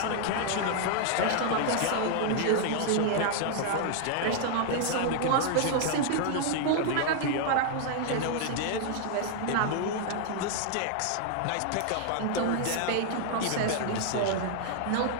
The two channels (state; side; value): different; both; correlation 0.00